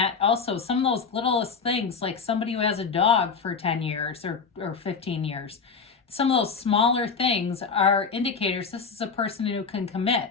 also, some of those littlest things, like somebody who has a dog for 10 years or 15 years. Some of those smaller things are indicators this is a person who can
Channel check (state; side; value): quieter; right; 5.4 dB